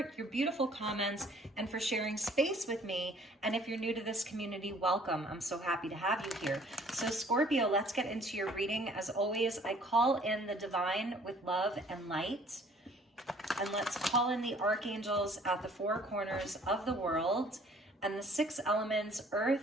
your beautiful comments, and for sharing space with me. And if you're new to this community, welcome. I'm so happy to have you here. So Scorpio, let's get into your reading. As always, I call in the divine with love and light. And let's call in the archangels at the four corners of the world and the six elements,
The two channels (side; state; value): both; normal; correlation 0.56